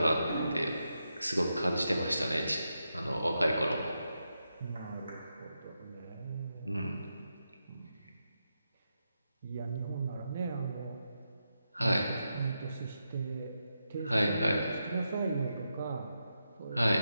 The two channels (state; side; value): inverted; both; correlation -0.86